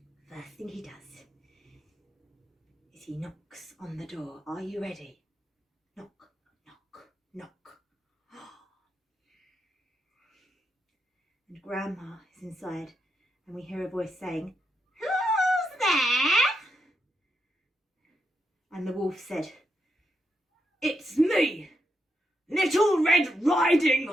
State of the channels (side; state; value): both; normal; correlation 0.82